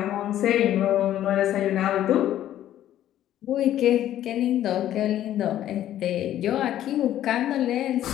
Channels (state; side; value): quieter; right; 12.2 dB